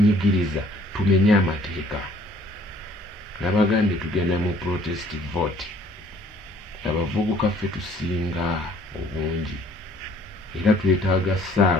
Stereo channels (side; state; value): both; normal; correlation 0.58